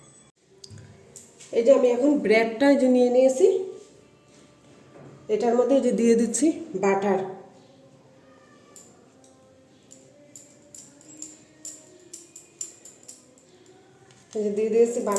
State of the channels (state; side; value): identical; both; correlation 1.00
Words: এই যে আমি এখন ব্রেডটা যে নিয়ে নিয়েছি, এটার মধ্যে যে দিয়ে দিচ্ছি বাটার, এই যে দিয়ে দিয়েছি